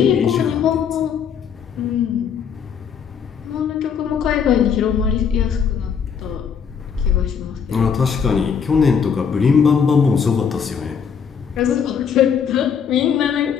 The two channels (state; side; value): quieter; right; 7.0 dB